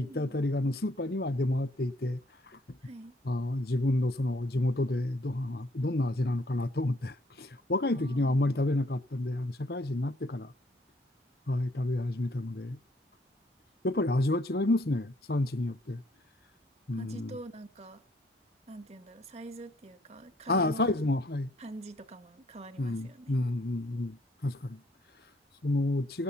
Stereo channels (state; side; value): normal; both; correlation 0.67